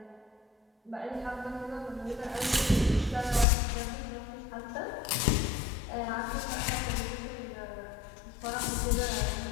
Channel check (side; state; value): right; drops out; at 3.5 s